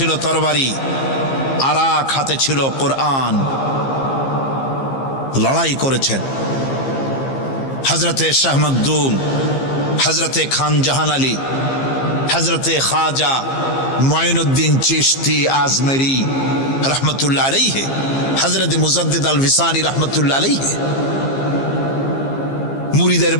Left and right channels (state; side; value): late; right; 15 ms